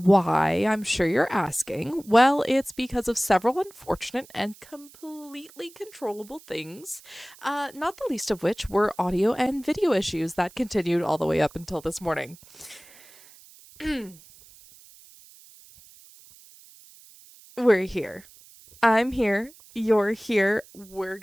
I'm sure you're asking. Well, it's because of several unfortunate and completely controllable things, not the least of which were audio and video issues that continued all the way up until this morning. We're here. I'm here. You're here. We're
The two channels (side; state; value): right; noise; hiss, 23 dB below the sound